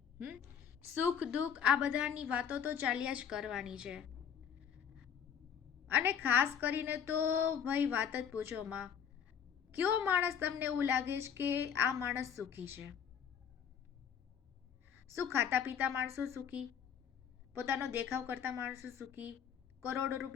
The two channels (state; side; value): quieter; right; 7.9 dB